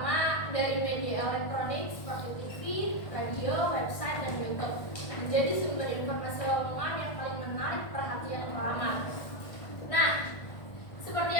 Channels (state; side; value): late; right; 1.5 ms